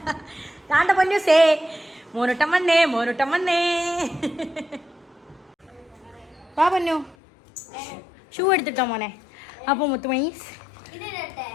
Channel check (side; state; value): right; drops out; at 7.2 s